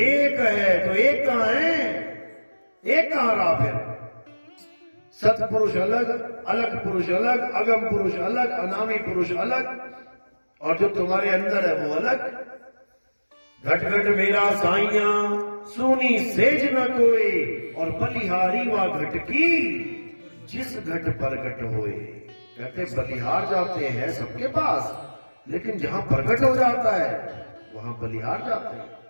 है। तो एक कहां है? एक कहां रहा फिर? सतपुरुष अलग, अलग पुरुष अलग, अगम पुरुष अलग, अनामी पुरुष अलग, और जो तुम्हारे अंदर है वो अलग। घट घट मेरा साइया सुनी सेज न कोई, और बलिहारी वा घट की जिस घट प्रगट होए। कहते बलिहार जाते हैं सबके पास, लेकिन जहां प्रगट हो जाता है वहां बलिहार जाते हैं।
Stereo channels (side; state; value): both; inverted; correlation -1.00